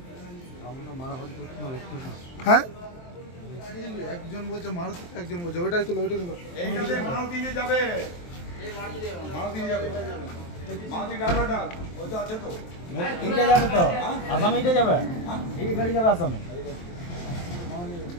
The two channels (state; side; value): late; right; 23 ms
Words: হ্যাঁ, একজন বলছে মারুতি, একজন বলছে ওইটাই তুলো, ওইটাই তুলো। মারুতি দিয়ে যাবে, মারুতি যাবে, মারুতি ড্রাইভারটা ওই তো আছে তো, এইটা যাবে তো আসামে, এইটা যাবে, এই গাড়ি যাবে আসামে।